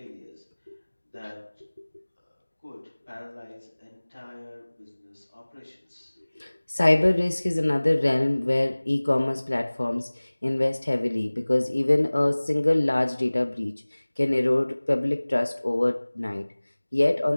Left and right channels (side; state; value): both; inverted; correlation -1.00